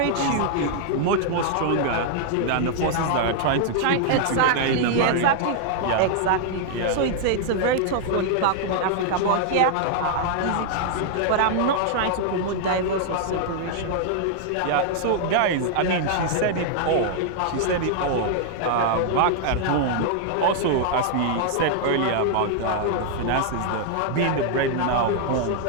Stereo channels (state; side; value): different; both; correlation -0.01